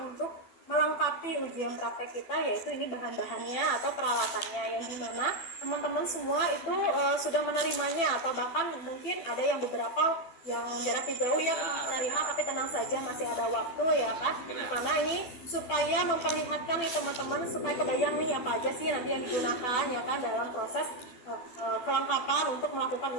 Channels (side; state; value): right; late; 12 ms